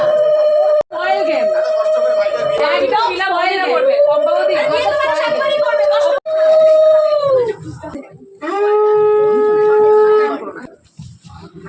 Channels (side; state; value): both; identical; correlation 1.00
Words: অয়েল গেম একদম মিলা ভয় না করবে কম্পাউন্ডি সাতবারই করবে কষ্ট